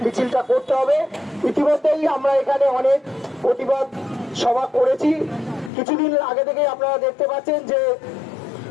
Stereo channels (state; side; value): drops out; right; at 5.7 s